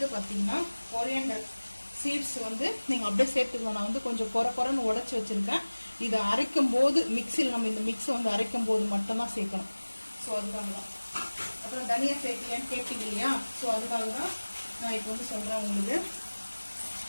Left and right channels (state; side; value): inverted; both; correlation -1.00